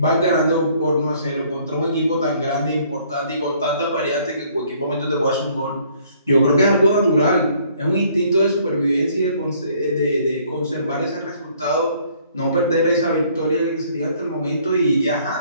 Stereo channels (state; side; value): inverted; both; correlation -0.61